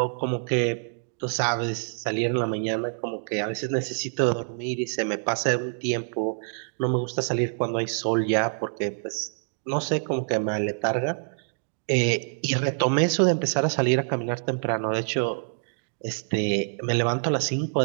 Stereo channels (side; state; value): left; silent; digital silence